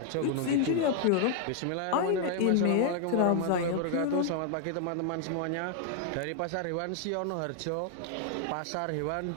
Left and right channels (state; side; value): different; both; correlation 0.00